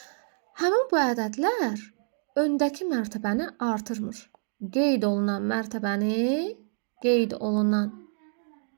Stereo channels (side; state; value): left; silent; digital silence